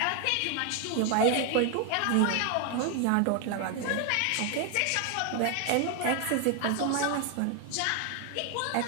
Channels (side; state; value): both; different; correlation 0.01